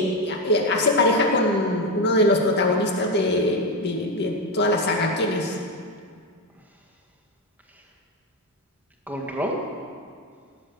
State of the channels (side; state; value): both; normal; correlation 0.10